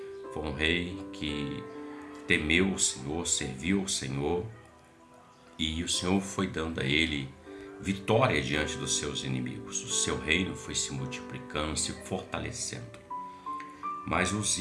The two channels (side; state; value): both; identical; correlation 1.00